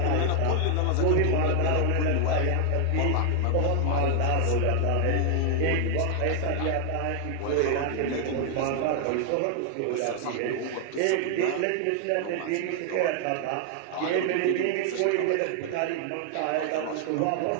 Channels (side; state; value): both; different; correlation 0.00